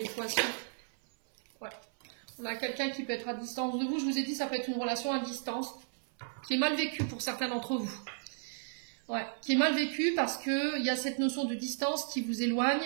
poissons. Ouais. On a quelqu'un qui peut être à distance de vous. Je vous ai dit, ça peut être une relation à distance qui est mal vécue pour certains d'entre vous. Ouais, qui est mal vécue parce que il y a cette notion de distance qui vous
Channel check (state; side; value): silent; left; 55 dB below the other